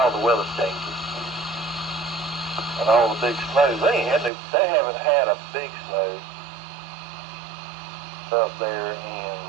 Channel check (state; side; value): drops out; left; at 4.3 s